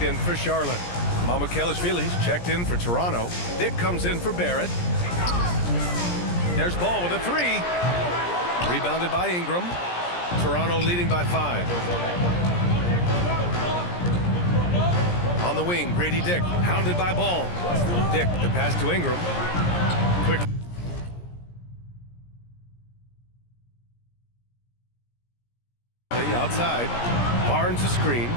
in for Charlotte. Mamukelashvili's checked in for Toronto. Dick comes in for Barrett. There's Ball with a 3. Rebounded by Ingram. Toronto leading by 5. On the wing, Grady Dick, hounded by Ball. Dick, the pass to Ingram. Quick. Outside. Barnes a screen.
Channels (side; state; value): right; late; 17 ms